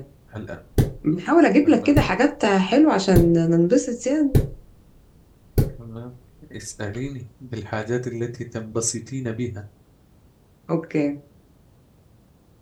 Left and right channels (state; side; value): identical; both; correlation 1.00